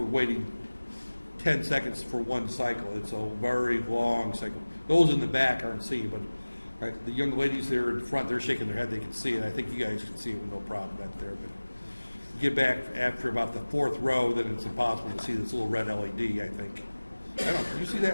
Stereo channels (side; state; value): both; inverted; correlation -1.00